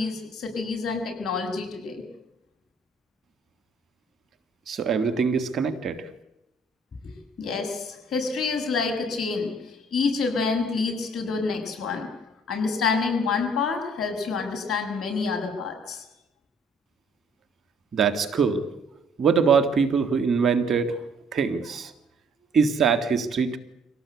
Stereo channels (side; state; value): both; normal; correlation 0.60